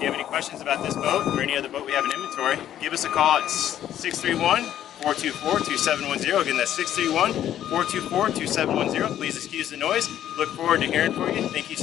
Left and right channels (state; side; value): quieter; right; 11.3 dB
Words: you have any questions about this boat or any other boat we have in inventory, give us a call at 631-424-2710. Again, that's 631-424-2710. Please excuse the noise. Look forward to hearing from you. Thank you for